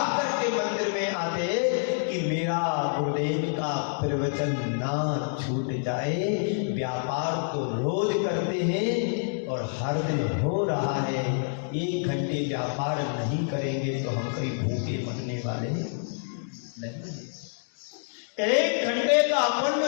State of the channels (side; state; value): right; silent; digital silence